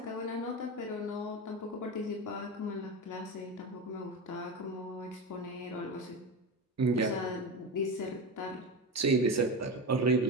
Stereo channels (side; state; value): both; normal; correlation 0.21